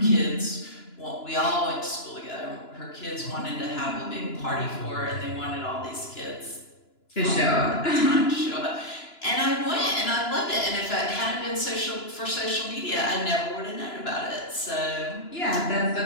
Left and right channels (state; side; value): late; right; 2.9 ms